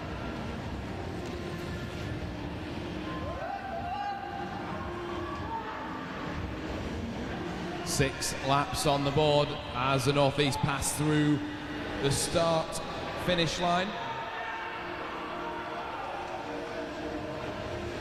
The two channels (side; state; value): both; identical; correlation 1.00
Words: Six laps on the board as the North East pass through the start-finish line.